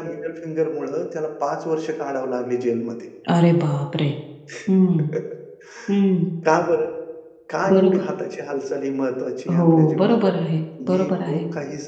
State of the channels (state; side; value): identical; both; correlation 1.00